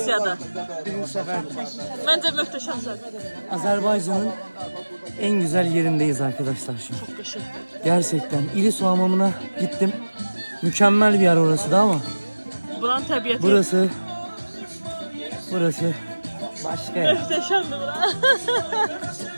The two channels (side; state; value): both; inverted; correlation -1.00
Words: Birinci sefer. Bence möhtəşəmsən. Azerbaycan'ın en güzel yerindeyiz arkadaşlar şu an. Çok qəşəng. Gerçekten İlisu hamamına gittim. Mükemmel bir yer orası da ama Buranın təbiəti burası başka yer. möhtəşəmdir bura.